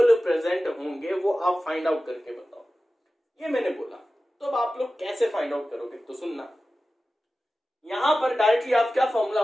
प्रेजेंट होंगे, वो आप फाइंड आउट करके बताओ। ये मैंने बोला। तो अब आप लोग कैसे फाइंड आउट करोगे, तो सुनना, यहां पर डायरेक्टली आप क्या फॉर्मूला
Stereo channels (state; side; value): normal; both; correlation 0.95